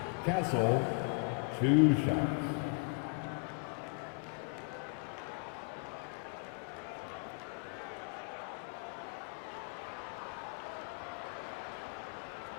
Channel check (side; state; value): right; quieter; 35.0 dB